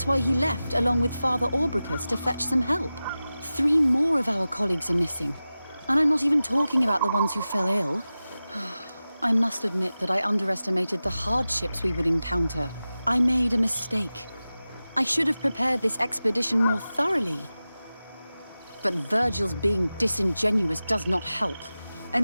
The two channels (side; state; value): both; inverted; correlation -0.95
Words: why he left along with Father Orbricus to fetch some help. 3 more of our colleagues are missing. And I'm not even talking about the ones who fell ill. I must admit that I underestimated the hardships we would encounter. I made a mistake. I should have prepared this expedition more thoroughly. But Virgil's being disingenuous does not help.